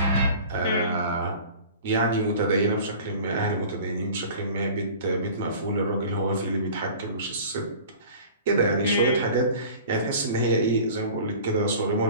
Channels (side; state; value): both; inverted; correlation -0.42